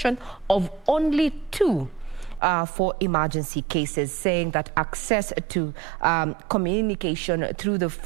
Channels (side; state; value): left; drops out; at 2.4 s